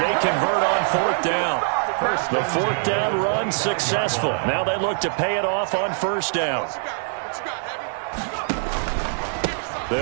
convert on 4th down. The 4th down run successful. Now they look to pay it off on 1st down.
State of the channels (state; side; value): silent; left; 58 dB below the other